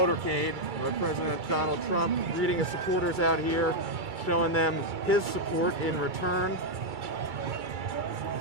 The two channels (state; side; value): late; left; 2.3 ms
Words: where President Donald Trump greeting his supporters out here, showing them his support in return.